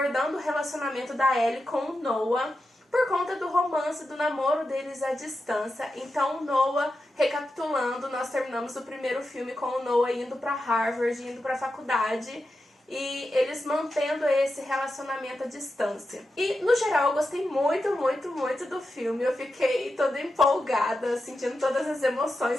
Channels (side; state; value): both; normal; correlation 0.90